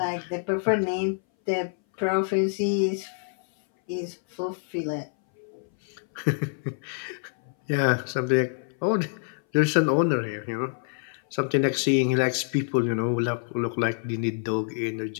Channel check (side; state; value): right; silent; 59 dB below the other